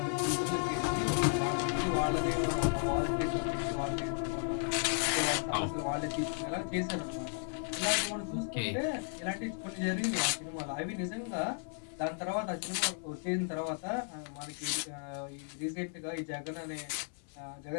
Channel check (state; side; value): silent; right; 55 dB below the other